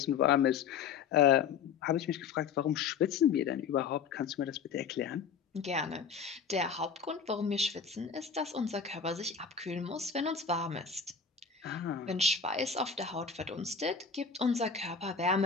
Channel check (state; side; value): quieter; right; 6.2 dB